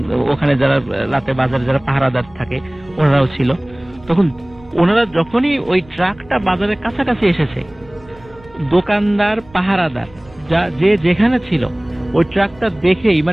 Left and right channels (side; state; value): right; noise; rumble, 25 dB below the sound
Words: ওখানে যারা রাতে বাজারে যারা পাহারাদার থাকে ওনারাও ছিল। তখন ওনারা যখনই ওই ট্রাকটা বাজারের কাছাকাছি এসেছে, দোকানদার পাহারাদার যে যেখানে ছিল ওই ট্রাকটা দেখেই